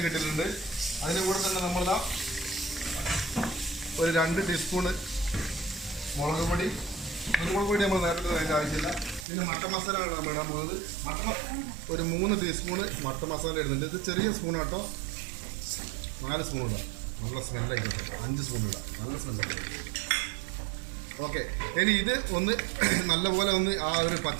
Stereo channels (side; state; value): left; drops out; at 9.2 s